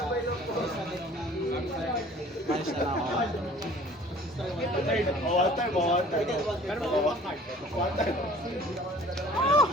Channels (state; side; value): normal; both; correlation 0.50